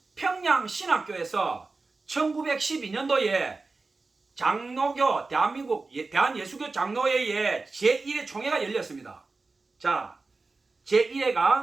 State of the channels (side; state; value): left; quieter; 3.8 dB